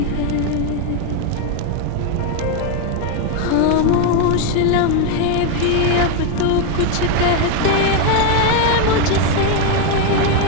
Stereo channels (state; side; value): different; both; correlation 0.01